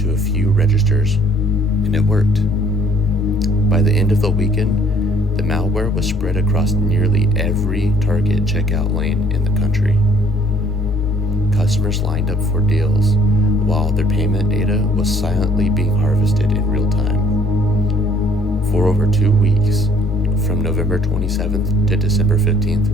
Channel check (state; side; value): normal; both; correlation 0.60